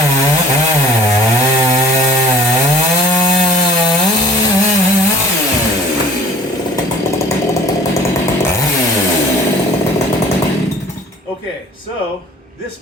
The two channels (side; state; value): both; normal; correlation 0.49